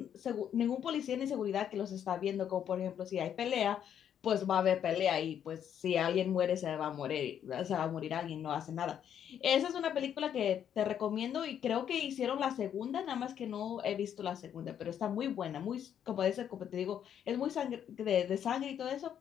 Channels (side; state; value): right; quieter; 9.2 dB